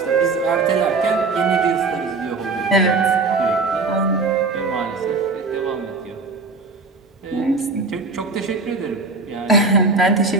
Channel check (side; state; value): left; quieter; 3.8 dB